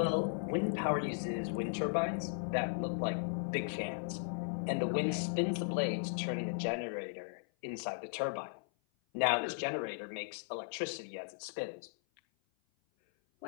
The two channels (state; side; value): silent; right; 53 dB below the other